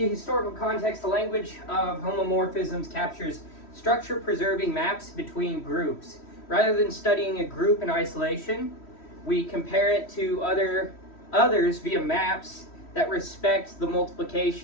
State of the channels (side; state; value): right; late; 3.1 ms